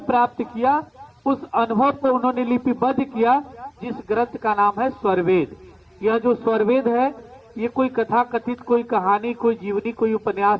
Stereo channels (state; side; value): identical; both; correlation 1.00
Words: प्राप्त किया, उस अनुभव को उन्होंने लिपिबद्ध किया, जिस ग्रंथ का नाम है स्वरवेद। यह जो स्वरवेद है, ये कोई कथा कथित, कोई कहानी, कोई जीवनी, कोई